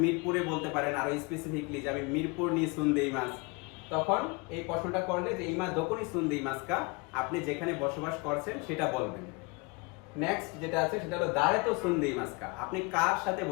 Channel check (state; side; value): quieter; right; 28.1 dB